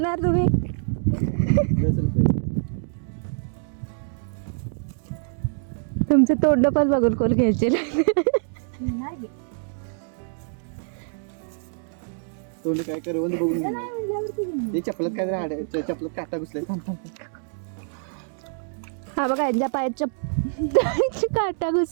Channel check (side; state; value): left; silent; digital silence